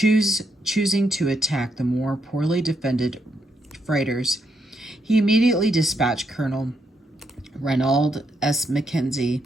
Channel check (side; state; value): both; normal; correlation 0.78